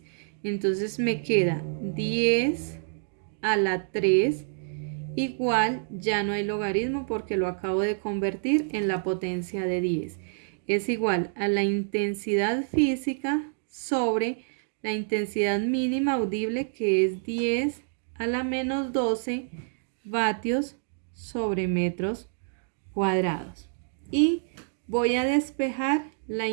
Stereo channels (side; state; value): left; silent; digital silence